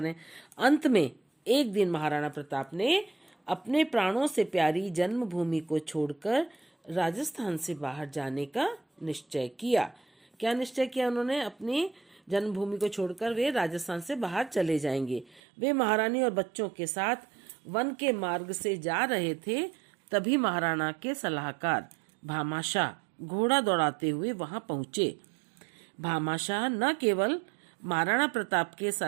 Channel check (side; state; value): left; drops out; at 15.4 s